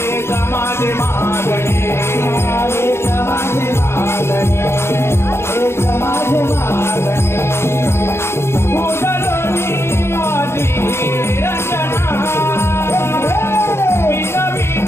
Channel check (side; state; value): right; late; 0.12 ms